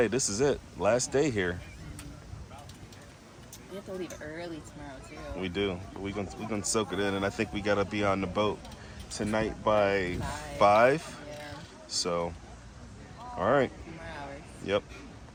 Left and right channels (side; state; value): both; identical; correlation 1.00